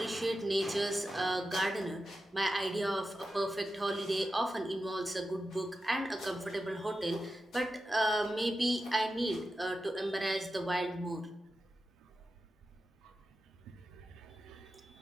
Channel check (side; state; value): both; normal; correlation 0.91